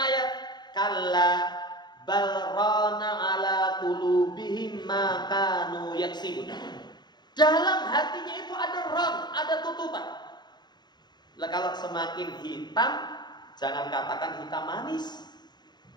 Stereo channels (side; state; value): right; late; 0.21 ms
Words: kalla bal rana ala qulubihim ma kanu yaksibun. Dalam hatinya itu ada ram, ada tutupan. Lah kalau semakin hitam, jangan katakan hitam manis.